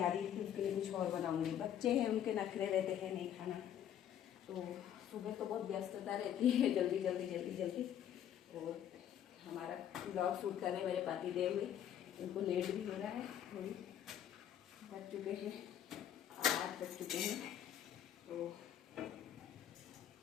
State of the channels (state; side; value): quieter; right; 10.2 dB